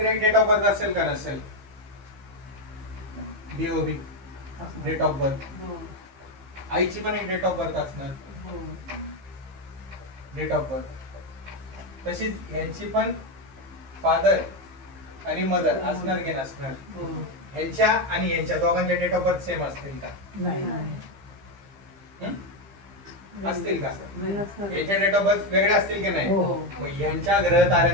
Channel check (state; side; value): late; left; 15 ms